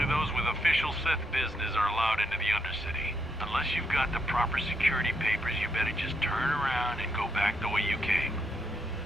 those with official Sith business are allowed into the Undercity. Unless you've got the proper security papers, you better just turn around and go back the way you came.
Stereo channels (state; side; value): normal; both; correlation 0.79